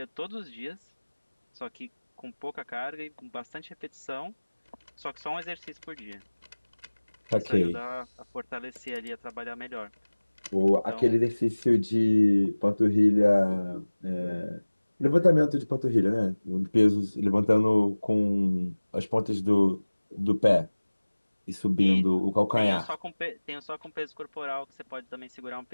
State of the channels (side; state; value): both; inverted; correlation -1.00